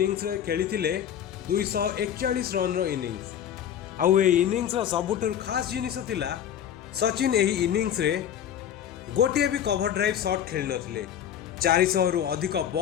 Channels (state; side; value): quieter; right; 9.7 dB